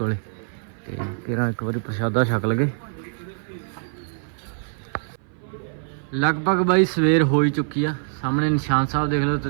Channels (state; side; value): silent; left; 57 dB below the other